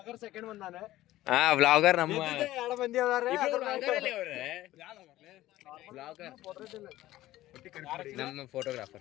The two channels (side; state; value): right; quieter; 15.6 dB